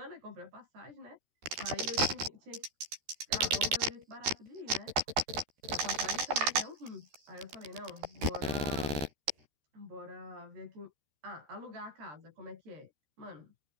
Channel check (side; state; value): left; late; 13 ms